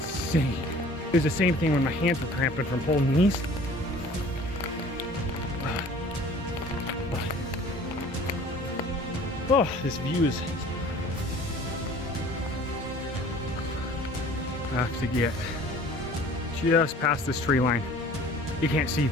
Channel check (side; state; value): both; normal; correlation 0.49